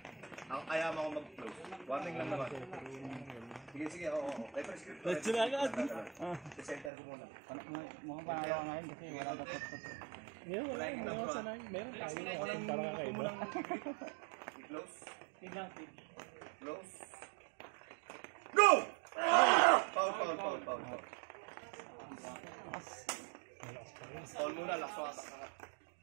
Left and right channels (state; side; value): drops out; left; at 6.9 s